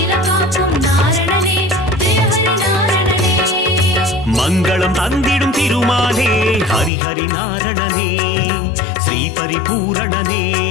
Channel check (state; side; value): drops out; right; at 6.9 s